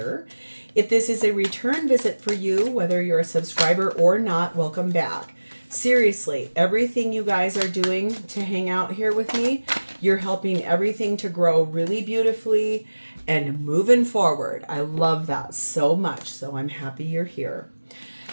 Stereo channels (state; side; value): inverted; both; correlation -1.00